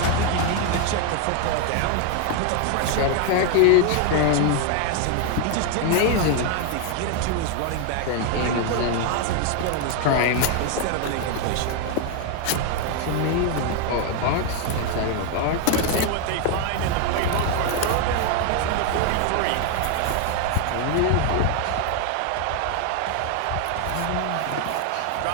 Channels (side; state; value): both; different; correlation 0.01